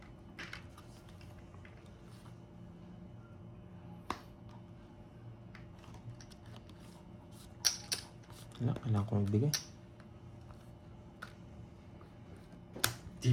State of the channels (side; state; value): both; identical; correlation 1.00